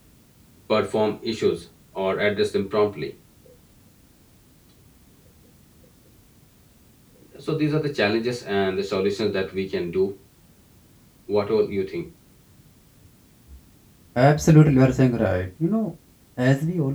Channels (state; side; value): identical; both; correlation 1.00